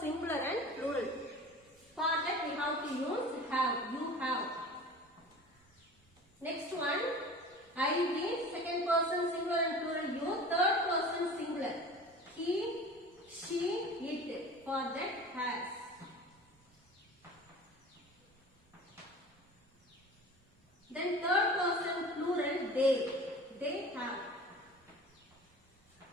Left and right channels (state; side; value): normal; both; correlation 0.39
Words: singular and plural. For that we have to use have. You have. Next one. I be second person singular and plural. You third person singular. He, she, it. For that has. Then third person plural they. They have.